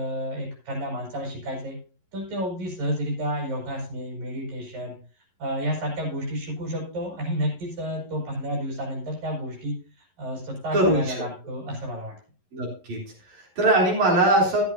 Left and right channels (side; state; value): left; late; 11 ms